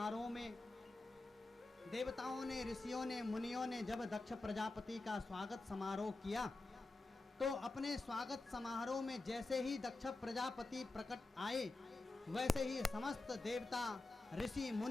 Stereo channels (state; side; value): quieter; right; 3.1 dB